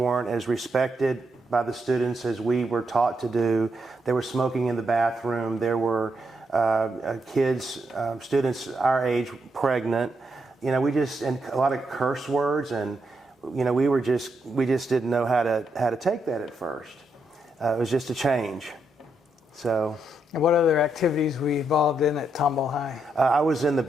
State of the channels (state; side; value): normal; both; correlation 0.80